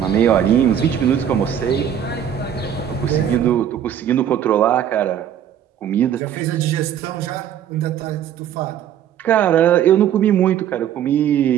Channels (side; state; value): left; quieter; 9.7 dB